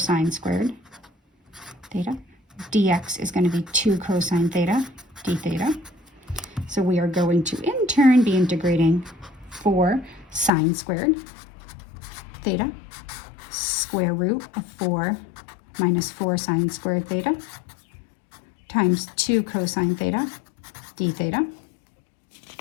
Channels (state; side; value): drops out; right; at 10.5 s